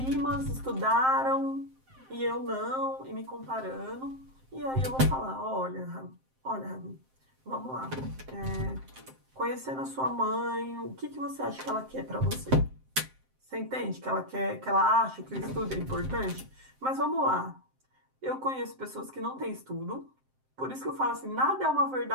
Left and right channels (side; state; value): left; late; 7.6 ms